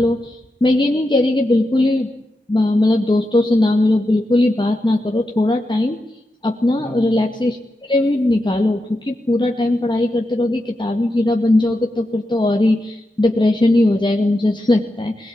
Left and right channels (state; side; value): normal; both; correlation 0.88